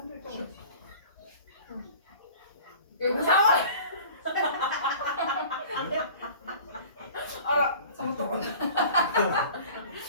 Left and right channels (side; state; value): both; inverted; correlation -0.44